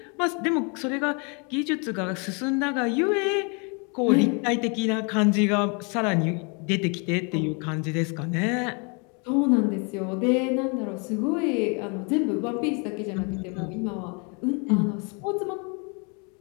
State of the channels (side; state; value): right; quieter; 34.1 dB